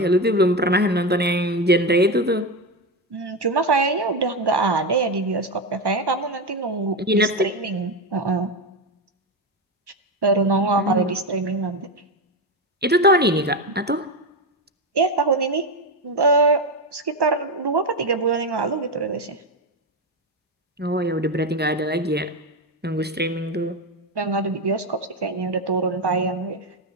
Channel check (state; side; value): normal; both; correlation 0.14